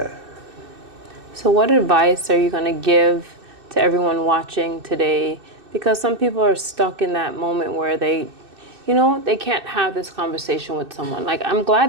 So what advice are you going to give to everyone watching today Because some people are stuck in that moment where they, they can't have this conversation with someone. Like, I'm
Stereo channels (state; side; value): late; left; 2.6 ms